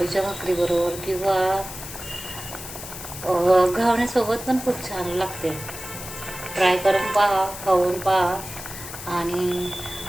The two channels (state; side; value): noise; left; hiss, 11 dB below the sound